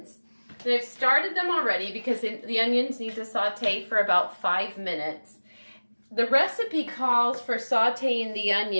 And I've started them already because the onions need to saute for about 5 minutes. The recipe calls for sauteing the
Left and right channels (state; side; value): inverted; both; correlation -1.00